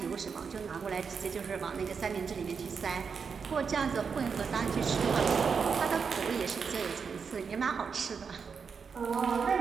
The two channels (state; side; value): quieter; left; 5.9 dB